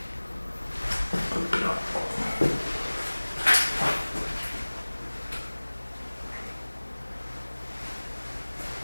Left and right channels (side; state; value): both; inverted; correlation -1.00